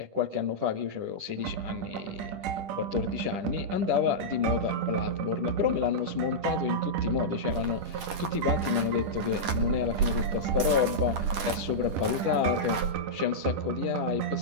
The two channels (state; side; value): late; left; 10 ms